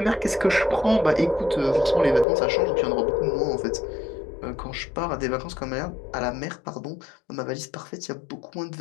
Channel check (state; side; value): drops out; right; at 2.2 s